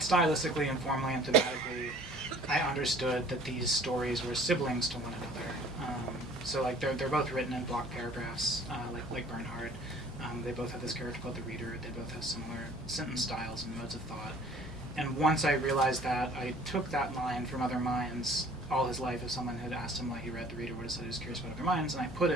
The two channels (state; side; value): normal; both; correlation 0.51